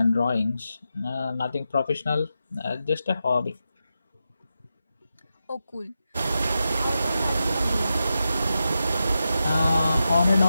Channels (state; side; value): inverted; both; correlation -0.89